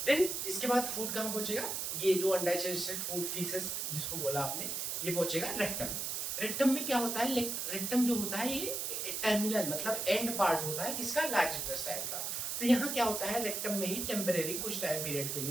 देन इसके बाद फूड कहाँ पहुंचेगा, ये जो अनडाइजेस्टेड फूड फीसेस जिसको बोला आपने, ये पहुंचेगा रेक्टम। रेक्टम में क्या होता है, रेक्टम जो होता है ये टर्मिनल मतलब एंड पार्ट होता है किसका, लार्ज इंटेस्टाइन का। तो यहाँ क्या होता है, रेक्टम में ही टेम्परेरी कुछ टाइम पीरियड के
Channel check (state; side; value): noise; right; hiss, 2 dB below the sound